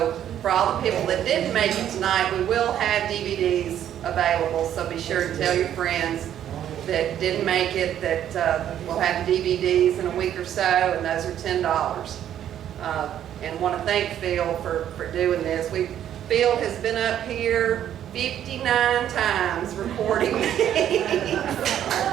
for all the people that didn't make it tonight, we will have DVDs available. So be sure to tell your friends that didn't make it that we'll have DVDs in a week or so, and those are $10. And want to thank Phil for doing this. Phil has been up here 59 times recording these. Yay,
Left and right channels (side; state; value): left; quieter; 10.6 dB